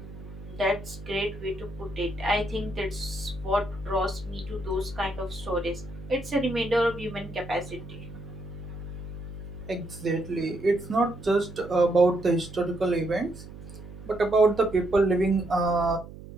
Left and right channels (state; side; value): noise; right; hum, 15 dB below the sound